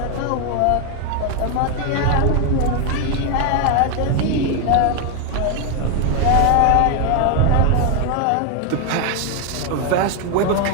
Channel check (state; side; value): different; both; correlation 0.01